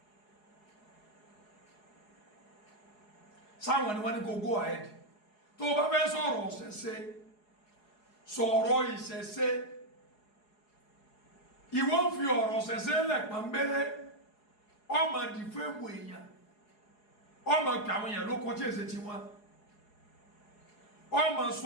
sáwọn ni wọ́n ní kó go ahead tó bá fẹ́ sọ̀rọ̀ ọ̀sẹ̀ṣe sọ̀rọ̀ ìṣẹ̀ṣe ìwọ ń fi ọ̀rọ̀ ọ̀sẹ̀ṣe lẹ̀ pọ̀nbélé ọmọ dìfẹ́mù èèyàn ọmọ pè àwọn èèyàn ló kọjá èsè tí wọ́n ọmọ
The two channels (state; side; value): late; right; 4.8 ms